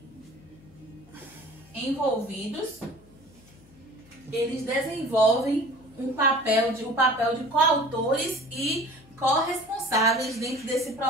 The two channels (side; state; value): left; noise; hum, 26 dB below the sound